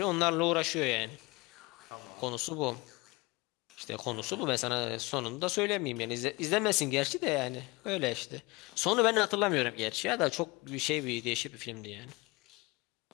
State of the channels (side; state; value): right; quieter; 24.4 dB